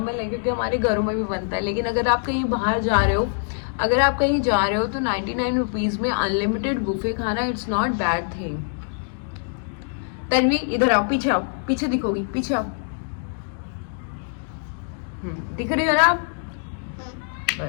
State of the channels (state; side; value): silent; right; digital silence